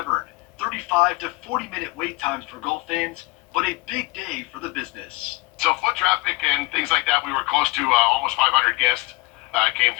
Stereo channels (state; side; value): quieter; right; 22.5 dB